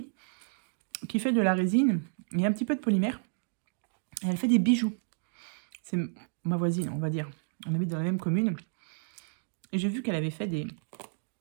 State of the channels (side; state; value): left; silent; digital silence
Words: qui fait de la résine et un petit peu de polymère. Et elle fait des bijoux. C'est ma voisine, on va dire. On habite dans la même commune. Et j'ai vu qu'elle avait fait des